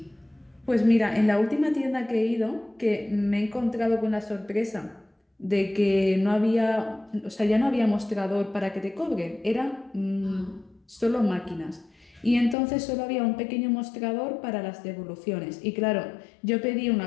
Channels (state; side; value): drops out; right; at 12.6 s